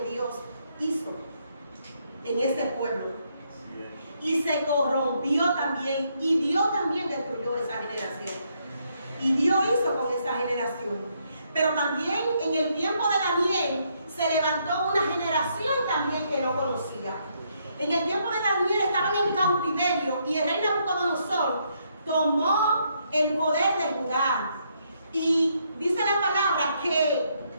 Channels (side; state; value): both; inverted; correlation -0.74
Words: Dios hizo en ese pueblo. Y se corrompió también, y Dios también destruyó esa generación. Y Dios hizo con esa generación. Pero también en el tiempo de Daniel se levantó una generación también que no conocía. En el tiempo de Daniel estaban en cautiverio y el rey Nabucodonosor tomó el poder de Judá. Y dice la palabra que